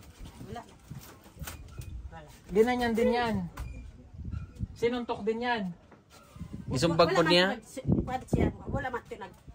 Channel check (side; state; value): both; identical; correlation 1.00